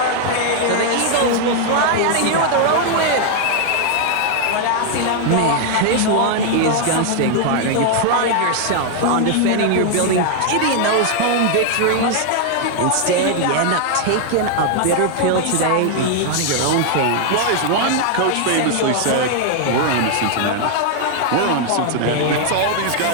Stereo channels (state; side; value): different; both; correlation 0.00